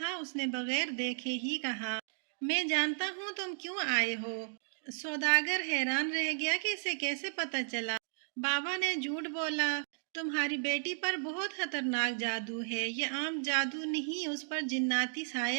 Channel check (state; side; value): silent; left; digital silence